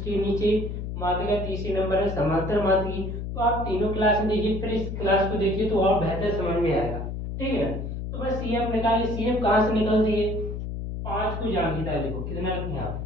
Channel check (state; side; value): noise; left; hum, 5 dB below the sound